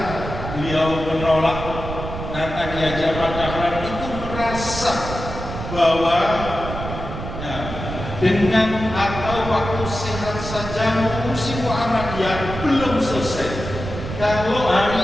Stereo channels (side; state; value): right; noise; rumble, 7 dB below the sound